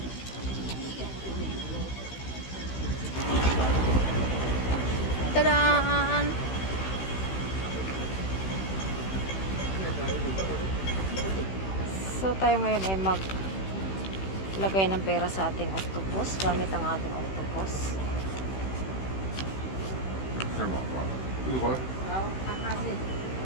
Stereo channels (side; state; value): right; late; 16 ms